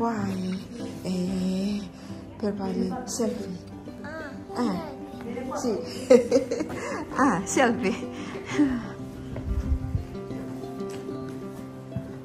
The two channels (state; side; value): identical; both; correlation 1.00